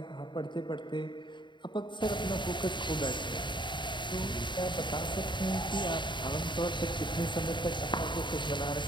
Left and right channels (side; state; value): right; late; 0.23 ms